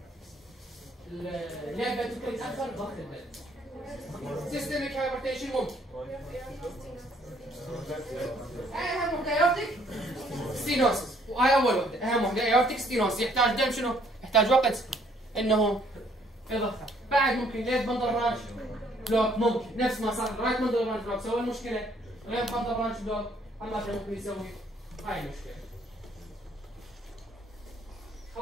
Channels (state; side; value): normal; both; correlation 0.64